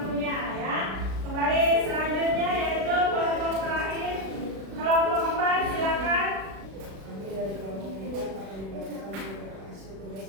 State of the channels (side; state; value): left; late; 36 ms